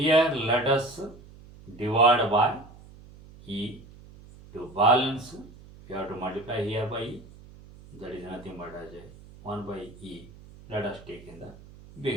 let us divide by e to balance. We have to multiply here by e. That is nothing but as a 1 by e. Let us take in the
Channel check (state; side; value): noise; right; hum, 20 dB below the sound